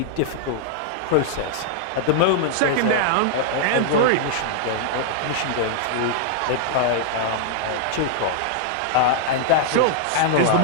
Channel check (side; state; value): both; different; correlation -0.01